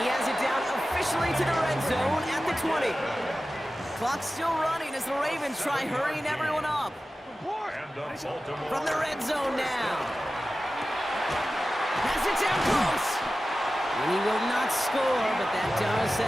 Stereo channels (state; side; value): normal; both; correlation 0.95